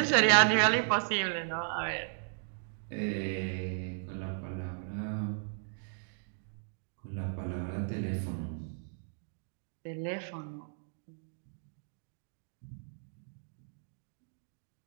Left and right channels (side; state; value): left; silent; digital silence